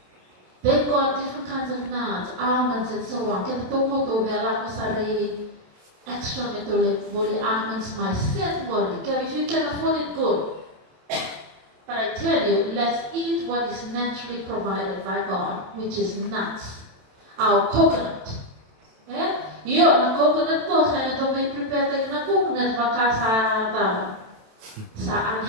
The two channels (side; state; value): left; late; 27 ms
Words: They've got different kinds of nuts, almonds, and so on. Extra metabolic body almonds myself body. If you can afford it, good. But I tell you, let's eat what is naturally provided by God, which is nuts. Our coconut. Yeah? Yo, na coconut ko, kaya ito may prepare tayo na coconut baka sa